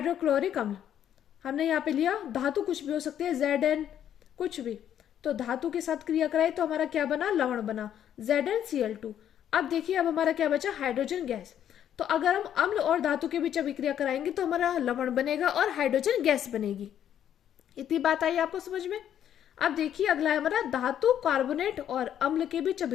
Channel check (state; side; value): quieter; right; 10.1 dB